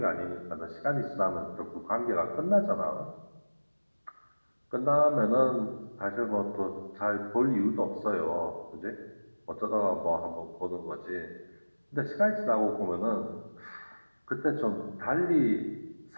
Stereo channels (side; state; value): both; inverted; correlation -1.00